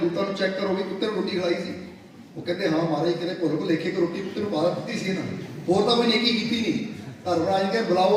ਨੂੰ ਚੈੱਕ ਕਰੋ ਵੀ ਕੁੱਤੇ ਨੂੰ ਰੋਟੀ ਖਿਲਾਈ ਸੀ। ਉਹ ਕਹਿੰਦੇ ਹਾਂ ਮਹਾਰਾਜ, ਕਿਤੇ ਭੁੱਲ ਭੁਲੇਖੇ ਕਿ ਰੋਟੀ ਕੁੱਤੇ ਨੂੰ ਪਾ ਦਿੱਤੀ ਸੀ ਇਹਨਾਂ, ਹੋਰ ਤਾਂ ਕੋਈ ਨੇਕੀ ਕੀਤੀ ਨਹੀਂ। ਧਰਮਰਾਜ ਕਹਿੰਦੇ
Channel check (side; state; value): both; identical; correlation 1.00